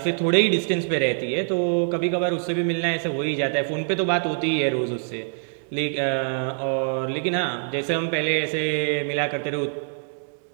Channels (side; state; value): left; silent; digital silence